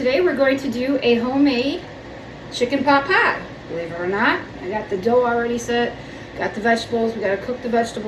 We're going to do a homemade chicken pot pie. Believe it or not, I got the dough already set. Got the vegetables. We got to cook the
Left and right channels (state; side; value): identical; both; correlation 1.00